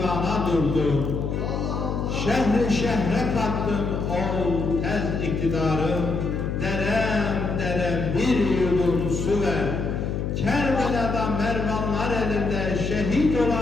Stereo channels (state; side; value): noise; left; hum, 2 dB below the sound